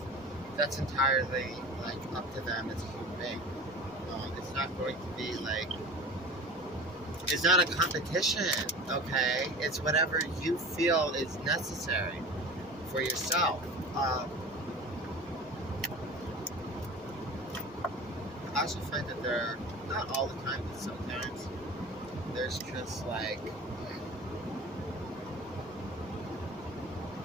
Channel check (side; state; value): both; normal; correlation 0.37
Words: That's entirely like up to them as a human being. It's not going to be like. It's not a competition, okay? It's whatever you feel is necessary for yourself. I also find that there, not all the time, but sometimes, there's just like